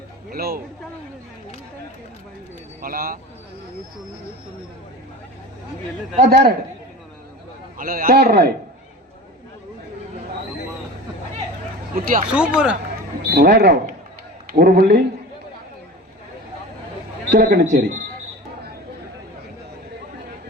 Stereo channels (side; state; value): both; normal; correlation 0.35